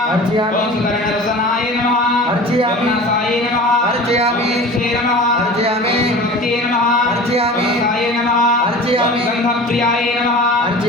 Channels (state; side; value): normal; both; correlation 0.38